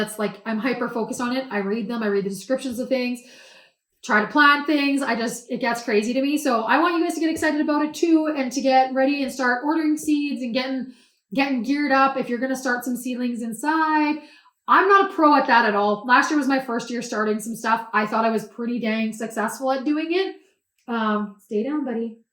hyper focused on it. I read them. I read the descriptions of things, try to plant things. It gets crazy to me. So I want you guys to get excited about it too and to get ready and start ordering seeds and getting geared up. If you're going to start some seedlings inside, I'm not a pro at that at all. Last year was my first year starting some stuff. I thought I was pretty dang successful at doing it. Stay down, buddy.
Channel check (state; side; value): identical; both; correlation 1.00